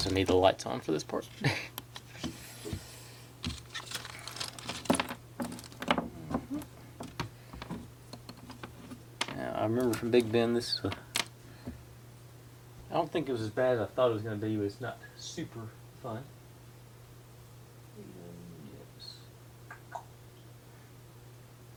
I need the lights on for this part. Now, I remember from Big Ben, this I don't think it was as bad as I thought it was going to be, but it's not super fun. Yes.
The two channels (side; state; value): both; identical; correlation 1.00